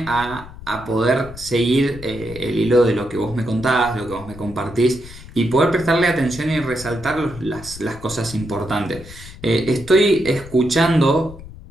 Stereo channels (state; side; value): noise; left; rumble, 16 dB below the sound